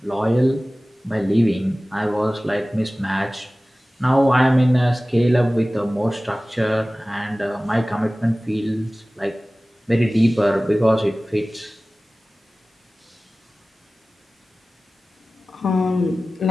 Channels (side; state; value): both; normal; correlation 0.97